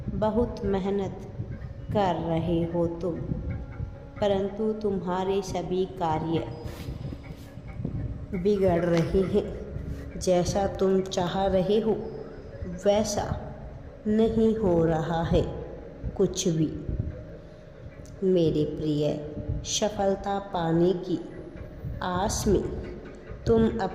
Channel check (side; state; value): both; identical; correlation 1.00